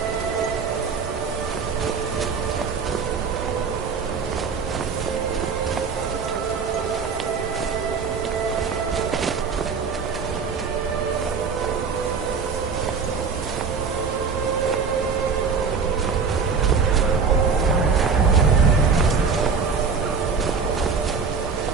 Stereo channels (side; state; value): left; quieter; 5.5 dB